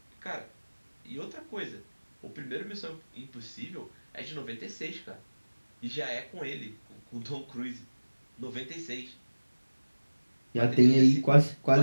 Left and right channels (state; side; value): inverted; both; correlation -1.00